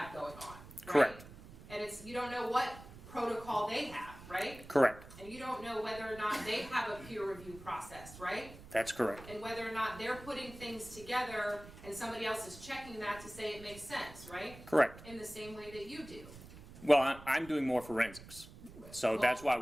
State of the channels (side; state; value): right; noise; rumble, 17 dB below the sound